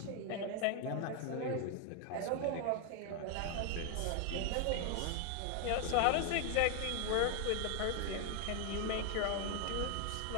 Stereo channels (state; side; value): different; both; correlation 0.01